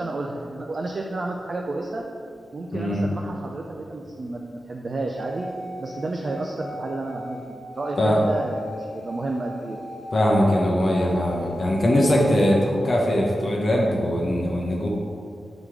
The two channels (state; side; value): normal; both; correlation 0.91